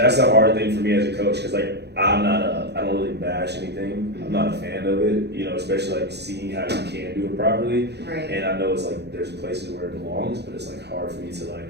the hard thing for me as a coach, because like I don't really bash anything. I'm not a fan of it, especially like seeing how you can do it properly, and I know it's like there's places where it belongs, but it's like hard for me to like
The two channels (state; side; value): late; left; 0.49 ms